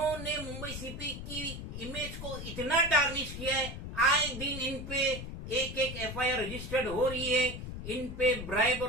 मुंबई सीपी की इमेज को इतना टार्निश किया है। आए दिन इन पे एक एक एफआईआर रजिस्टर्ड हो रही है, इन पे ब्राइब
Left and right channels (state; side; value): noise; left; rumble, 8 dB below the sound